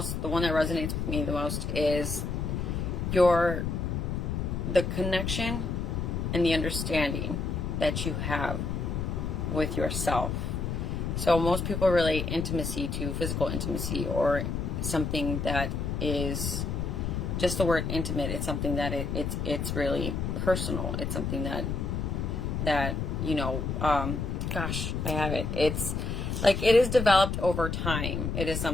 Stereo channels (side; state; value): left; noise; rumble, 2 dB below the sound